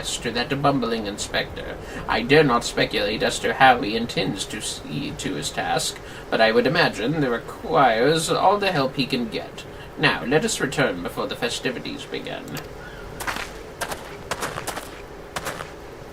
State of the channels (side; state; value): both; identical; correlation 1.00